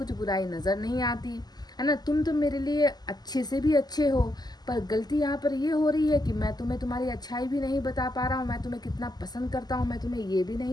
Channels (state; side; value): late; right; 0.20 ms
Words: बुराई नज़र नहीं आती, है ना, तुम तो मेरे लिए अच्छे से भी अच्छे हो, पर गलती यहाँ पर ये हो रही है कि मैं तुम्हें तुम्हारी अच्छाई भी नहीं बता पा रहा हूँ, मैं तुम्हें कितना पसंद करता हूँ मैं तुम्हें ये भी